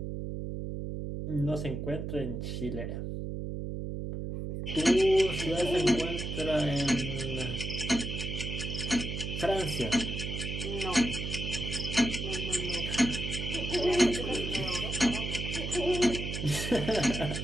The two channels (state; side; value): noise; right; hum, 4 dB below the sound